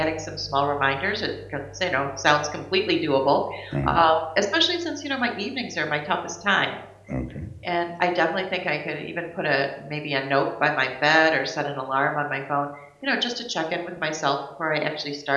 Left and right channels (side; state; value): both; identical; correlation 1.00